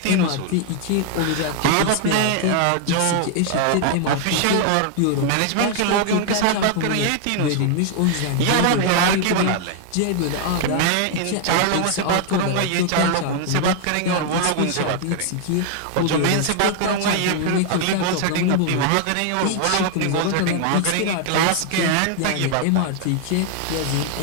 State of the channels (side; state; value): both; different; correlation 0.00